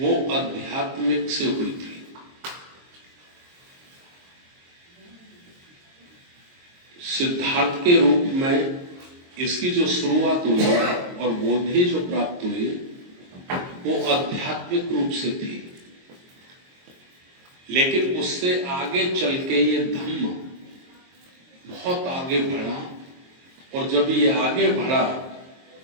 आध्यात्मिक से हुई थी। सिद्धार्थ के रूप में इसकी जो शुरुआत हुई और बोधि जो प्राप्त हुई वो आध्यात्मिक रूप से थी, लेकिन उससे आगे चल के ये धम्म बहुत आगे बढ़ा, और जब ये आगे बढ़ा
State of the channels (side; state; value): left; late; 22 ms